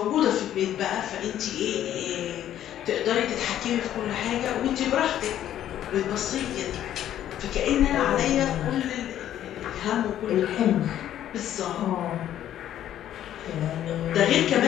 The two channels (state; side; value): quieter; right; 11.5 dB